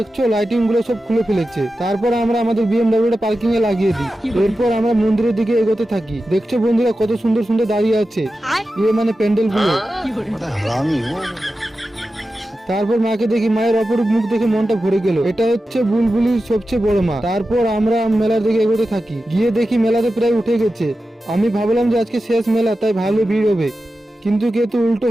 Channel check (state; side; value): normal; both; correlation 0.92